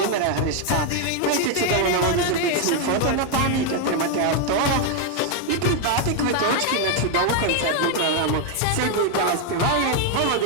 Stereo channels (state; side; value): different; both; correlation 0.01